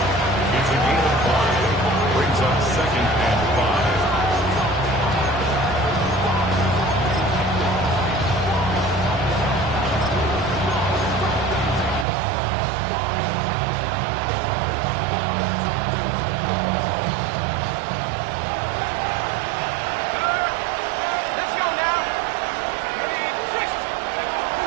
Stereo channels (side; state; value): left; drops out; at 12.1 s